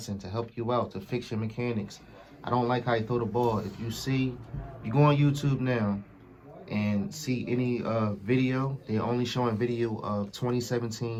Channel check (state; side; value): identical; both; correlation 1.00